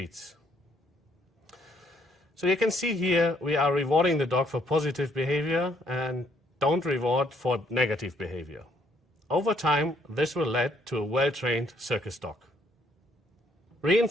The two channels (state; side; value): normal; both; correlation 0.68